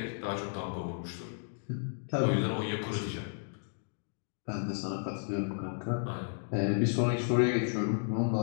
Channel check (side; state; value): right; silent; digital silence